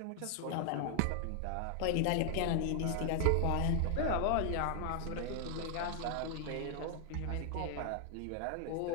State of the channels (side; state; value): both; different; correlation 0.00